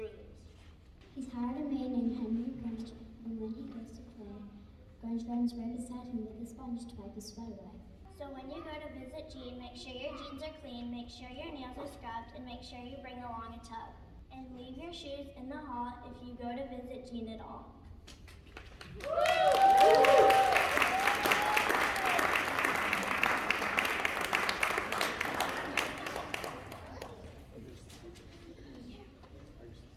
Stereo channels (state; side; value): identical; both; correlation 1.00